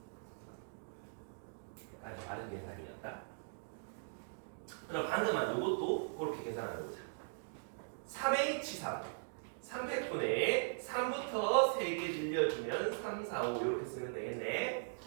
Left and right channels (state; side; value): silent; left; digital silence